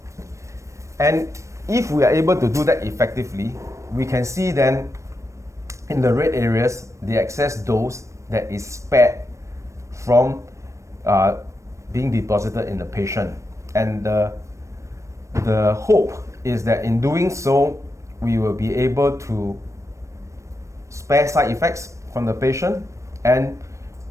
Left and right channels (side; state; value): left; late; 0.15 ms